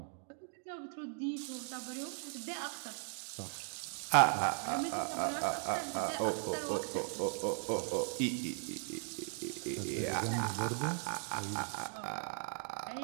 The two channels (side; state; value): left; silent; 52 dB below the other